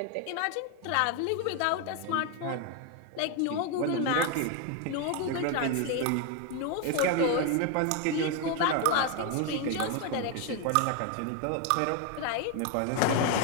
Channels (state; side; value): different; both; correlation 0.01